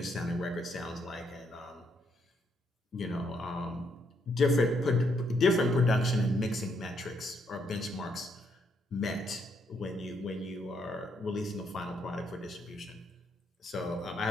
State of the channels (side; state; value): both; normal; correlation 0.74